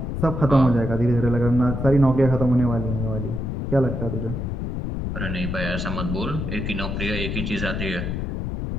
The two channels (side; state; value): left; noise; rumble, 3 dB below the sound